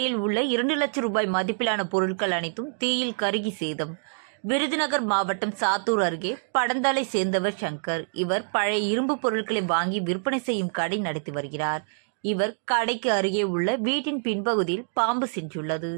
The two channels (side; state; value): left; silent; digital silence